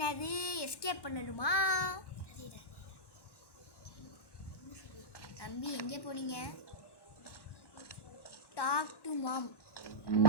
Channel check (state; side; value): late; right; 1.1 ms